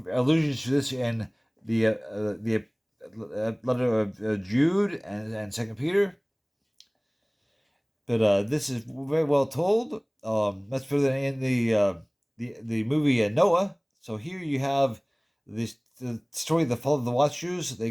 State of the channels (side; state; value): both; identical; correlation 1.00